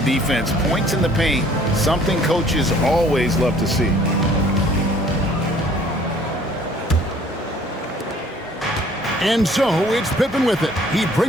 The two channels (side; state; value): both; normal; correlation 0.56